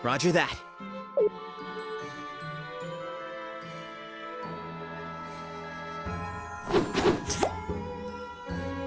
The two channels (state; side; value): identical; both; correlation 1.00